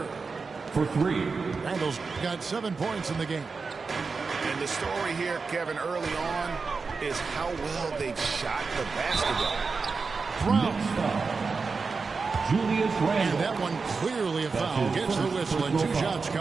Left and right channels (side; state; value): left; quieter; 4.6 dB